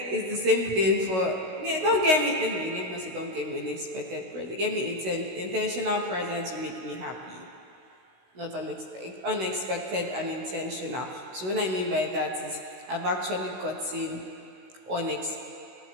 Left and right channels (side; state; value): left; late; 16 ms